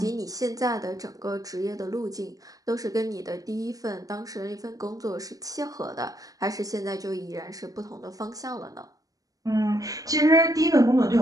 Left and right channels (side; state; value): left; late; 0.17 ms